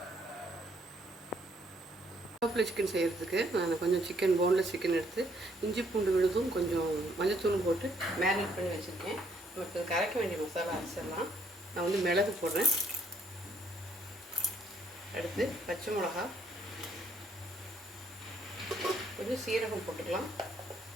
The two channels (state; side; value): normal; both; correlation 0.68